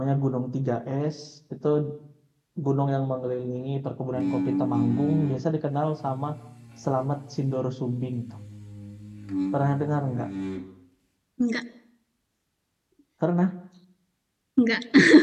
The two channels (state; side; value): identical; both; correlation 1.00